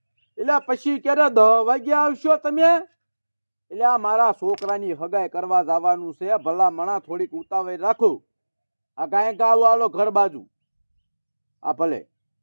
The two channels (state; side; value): inverted; both; correlation -1.00